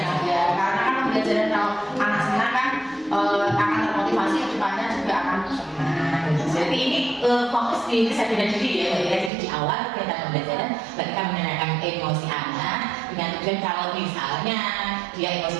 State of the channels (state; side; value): drops out; left; at 9.3 s